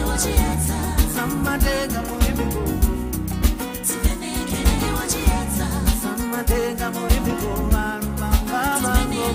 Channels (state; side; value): identical; both; correlation 1.00